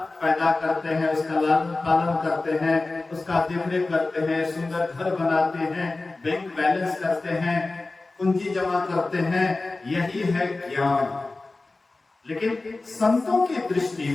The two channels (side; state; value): right; quieter; 3.3 dB